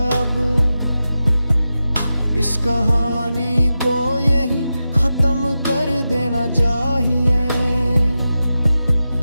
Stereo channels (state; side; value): inverted; both; correlation -0.92